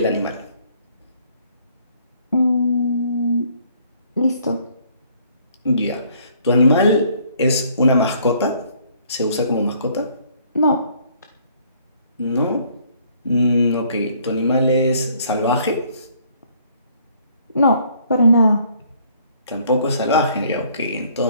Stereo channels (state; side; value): inverted; both; correlation -0.62